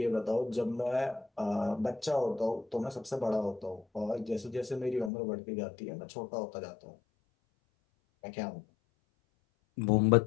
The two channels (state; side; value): drops out; right; at 5.1 s